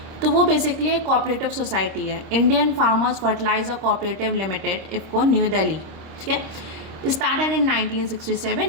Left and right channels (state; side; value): late; left; 26 ms